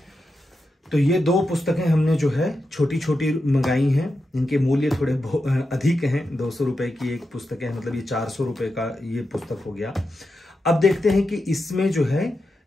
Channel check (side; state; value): both; normal; correlation 0.88